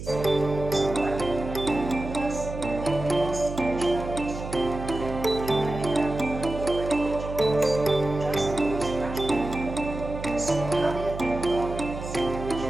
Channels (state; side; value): noise; right; hum, 9 dB below the sound